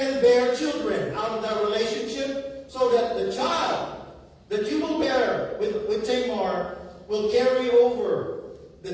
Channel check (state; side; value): identical; both; correlation 1.00